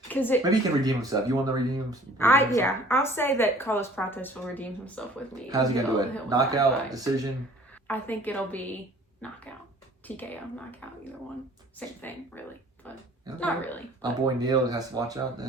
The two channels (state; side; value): normal; both; correlation 0.52